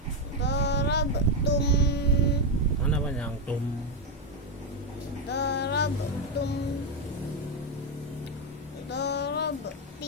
Darabtum. Mana panjang tum? Darabtum.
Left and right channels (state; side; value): normal; both; correlation 0.06